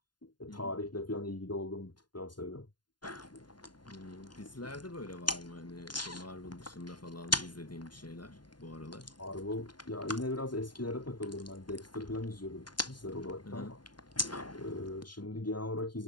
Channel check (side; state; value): right; late; 0.71 ms